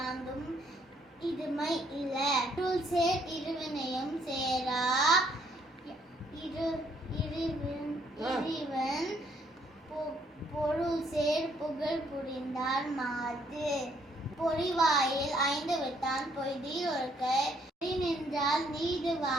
இதுமை இல இருள் சேர் இருவினையும் சேரா இறைவன் பொருள் சேர் புகழ் புரிந்தார் மாது பொறிவாயில் 5 விட்டான் பொய்தீர் ஒருக்க நின்றால் நீடு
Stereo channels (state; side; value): normal; both; correlation 0.68